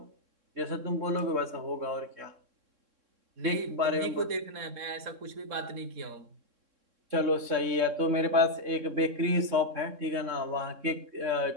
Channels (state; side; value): late; left; 3.7 ms